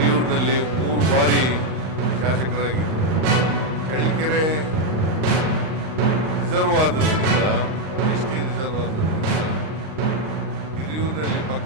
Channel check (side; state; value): left; late; 39 ms